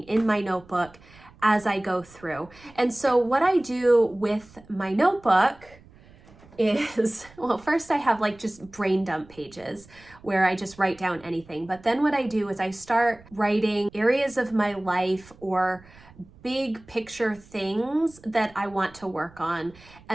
in my notebook as I go through. And so what I do with my notebook is, well, first I have like just brain dump pages where I just write down anything. But then what I do is I start writing areas of my life or big picture things that I want to work on.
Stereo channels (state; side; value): noise; right; rumble, 24 dB below the sound